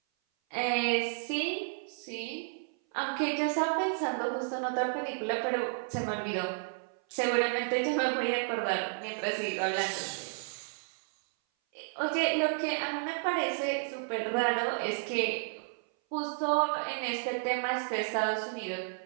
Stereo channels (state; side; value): silent; left; 56 dB below the other